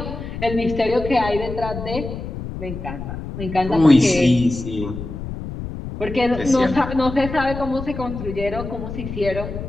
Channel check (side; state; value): left; noise; rumble, 8 dB below the sound